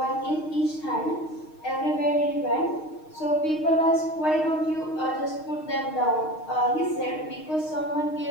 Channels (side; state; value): right; late; 6.4 ms